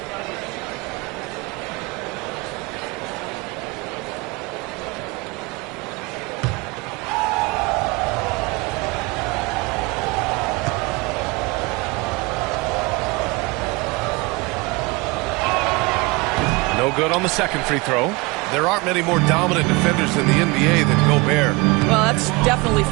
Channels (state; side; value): quieter; left; 25.7 dB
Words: No good on the second free throw. There aren't many more dominant defenders in the NBA than Gobert. Well, that's definitely